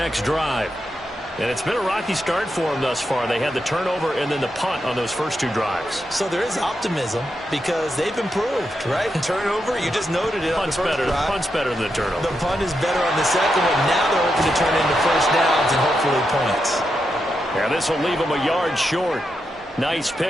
drive. And it's been a rocky start for them thus far. They had the turnover and then the punt on those first 2 drives. So there is optimism because they've improved, right? Turnover, you just noted it on the first drive. Punt's better than the turnover. The punt is better on the second one. Now they're hoping to turn into first downs and hopefully points. Yeah, this will leave them a yard short. Nice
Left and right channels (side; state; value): both; normal; correlation 0.85